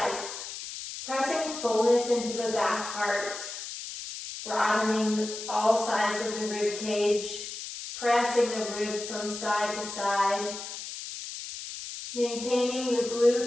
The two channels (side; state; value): left; noise; hiss, 9 dB below the sound